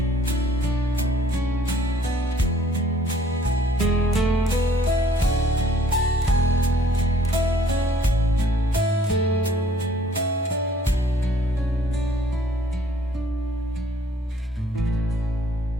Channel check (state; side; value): normal; both; correlation 0.59